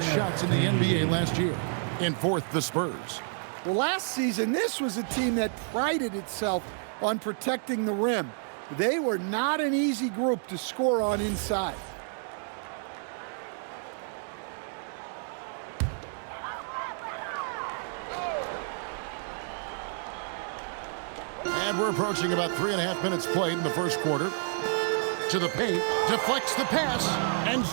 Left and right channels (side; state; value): left; silent; 58 dB below the other